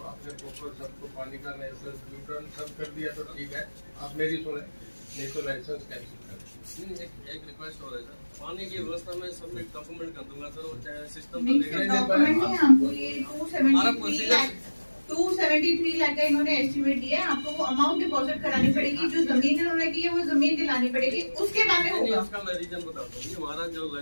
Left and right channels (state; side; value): inverted; both; correlation -1.00